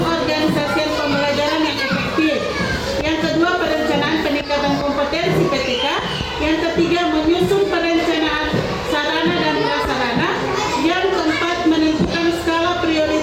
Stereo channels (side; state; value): both; identical; correlation 1.00